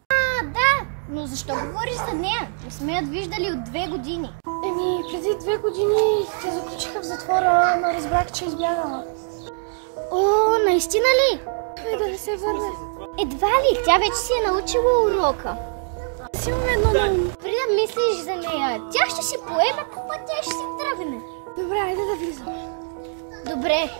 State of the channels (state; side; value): silent; left; digital silence